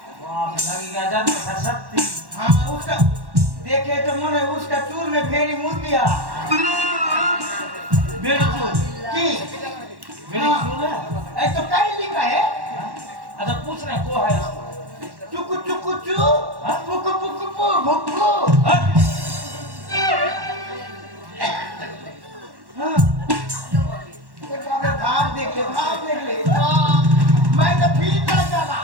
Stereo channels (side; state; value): left; late; 1.1 ms